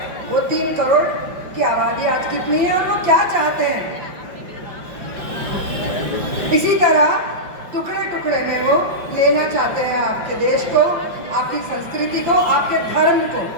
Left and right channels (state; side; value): late; left; 5.8 ms